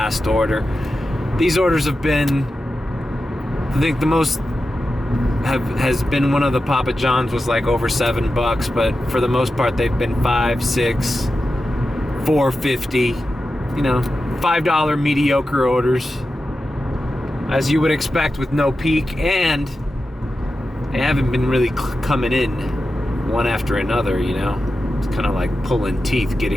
order. These orders have been, I think the most has been one of the Papa John's was like over $7, but for the most part they've been $5, $6, $4.50, $5 mediocre orders, as you would expect with no peak, and they haven't been really coming in one after another, It's kind of like pulling teeth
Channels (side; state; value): both; normal; correlation 0.91